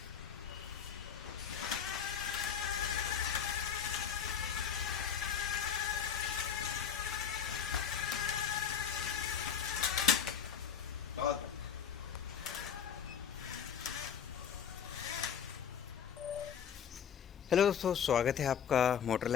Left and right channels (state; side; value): quieter; right; 8.0 dB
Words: बहुत हेलो दोस्तों, स्वागत है आपका मोटर